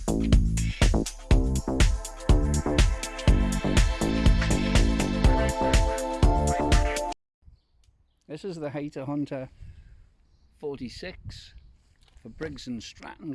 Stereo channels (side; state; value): both; identical; correlation 1.00